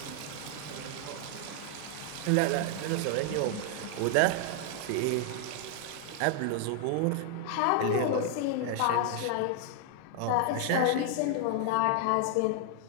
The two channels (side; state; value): both; different; correlation 0.00